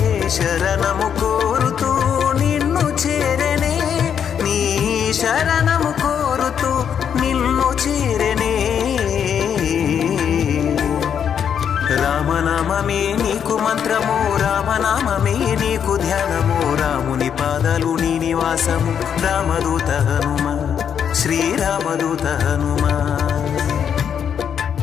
శరణము కోరుతూ నిన్ను చేరనే, నీ శరణము కోరుతూ నిన్ను చేరనే. రామనామమే నీకు మంత్రము, రామనామమే నీకు ధ్యానము, రాముని పాదాలు నీ నివాసము, రామదూత హనుమ, శ్రీరామదూత హనుమ.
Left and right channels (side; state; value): right; quieter; 8.1 dB